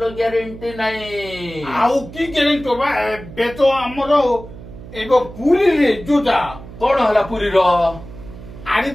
ଗ୍ୟାରେଣ୍ଟି ନାହିଁ ଆଉ କି ଗ୍ୟାରେଣ୍ଟି ହବା ଏବେ ତ ଆମର ଏବେ ପୁରୀରେ ଯୋଉଟା କଣ ହେଲା ପୁରୀର ଆରେ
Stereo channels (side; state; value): right; noise; hum, 15 dB below the sound